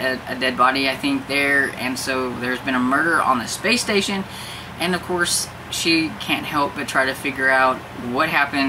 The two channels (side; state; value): both; identical; correlation 1.00